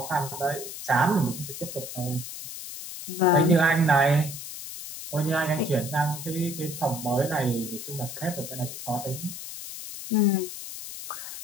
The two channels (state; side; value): noise; left; hiss, 10 dB below the sound